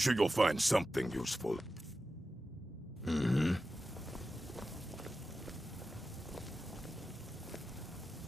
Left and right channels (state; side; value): normal; both; correlation 0.92